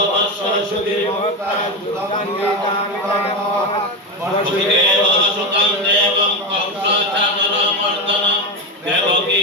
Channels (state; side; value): normal; both; correlation 0.15